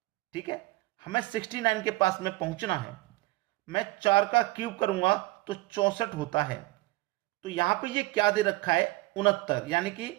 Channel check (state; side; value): quieter; left; 20.5 dB